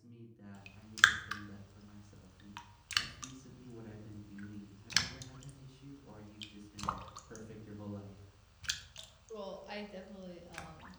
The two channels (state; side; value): identical; both; correlation 1.00